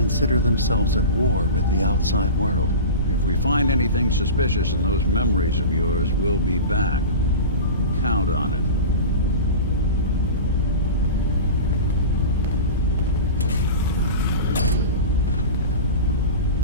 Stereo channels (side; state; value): both; inverted; correlation -0.31